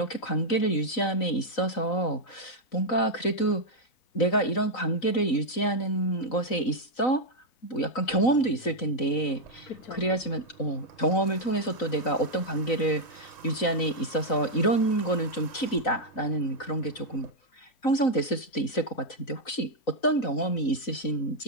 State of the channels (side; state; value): right; late; 3.9 ms